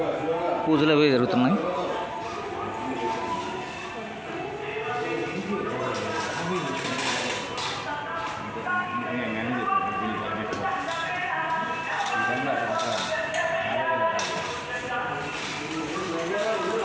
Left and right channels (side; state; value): both; identical; correlation 1.00